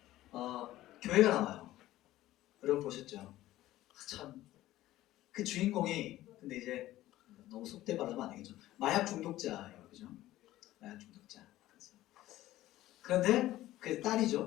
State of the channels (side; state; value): right; quieter; 15.3 dB